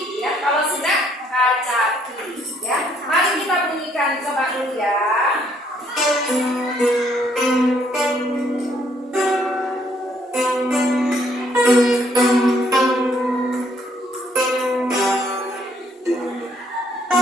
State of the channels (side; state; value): both; normal; correlation 0.67